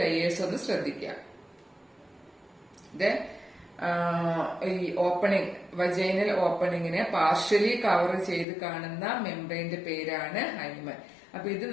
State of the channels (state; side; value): drops out; right; at 8.5 s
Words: ലെയേഴ്സ് ഒന്ന് ശ്രദ്ധിക്കാം. ഈ ഓപ്പണിംഗ്, വജൈനൽ ഓപ്പണിങ്ങിനെ പാർഷ്യലി കവർ ചെയ്ത് കാണുന്ന മെംബ്രെയിന്റെ പേരാണ് ഹൈമൻ. അപ്പൊ ഇത്